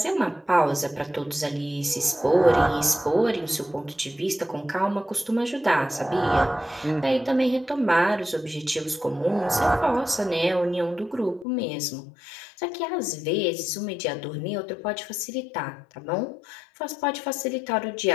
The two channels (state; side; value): drops out; right; at 11.5 s